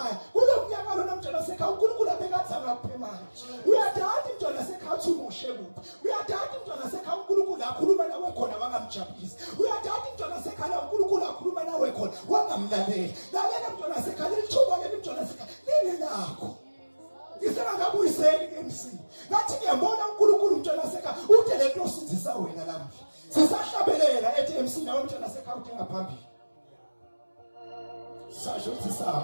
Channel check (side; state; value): both; inverted; correlation -1.00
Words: kulo mnyaka lona mntwana sekhaya uNkulunkulu abekathi akuphe manje. Uyadada mntwana sekhaya uthi umushe kuphi. Uyadada mntwana sekhaya uNkulunkulu akhuluma nawe khona wangamjabulisi. Uyadada mntwana sekhaya uNkulunkulu akhuluma nawe khona wangamlalela. Lalela mntwana sekhaya lithuba leli mntwana sekhaya leli lakho. Ngisengakabuyiseli ke MC. Ngathi ngiyambona uNkulunkulu mntwana sekhaya ude lento osizisa wena lapha. Sisahlabelela ethi MC nawe mntwana sekhaya udinga phambili. Sasho